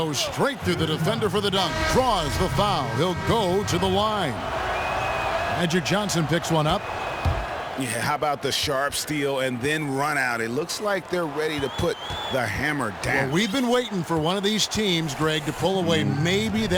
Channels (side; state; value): both; identical; correlation 1.00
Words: straight through the defender for the dunk. Draws the foul. He'll go to the line. Magic Johnson picks one up. Yeah, how about the sharp steal and then run out? It looks like they're ready to put the hammer down. Well, we've been waiting for one of these teams, Greg, to pull away. Maybe